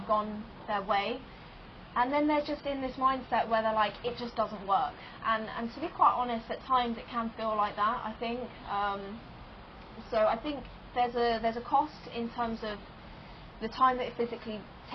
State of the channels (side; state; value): both; identical; correlation 1.00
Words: gone their way, and then they're just in this mindset where they're like, it just doesn't work. And to be quite honest, at times it can feel like that, I think. So I think there's a cost in terms of the time that it physically